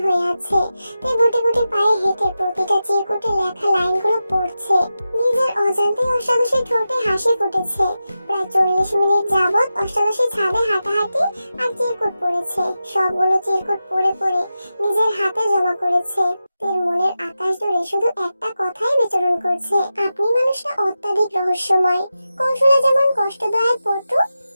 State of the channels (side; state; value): both; inverted; correlation -0.92